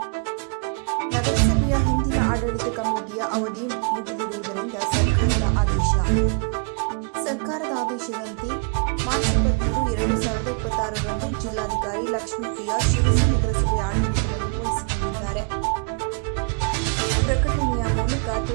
ನಗರಸಭೆಯ ಹಿಂದಿನ ಆಡಳಿತ ಕಮಿಟಿಯ ಅವಧಿ ಮುಗಿದಿರುವುದರಿಂದ ಸರ್ಕಾರದ ಆದೇಶದಂತೆ ಮಾರ್ಚ್ 23, 2026ರಂದು ಜಿಲ್ಲಾಧಿಕಾರಿ ಲಕ್ಷ್ಮೀಪ್ರಿಯಾ ಶಿರಸಿ ನಗರಸಭೆಯ ಆಡಳಿತವನ್ನು ವಹಿಸಿಕೊಂಡಿದ್ದಾರೆ. ಪ್ರಕಟಣೆಯ ಮೂಲಕ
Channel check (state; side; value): quieter; left; 35.8 dB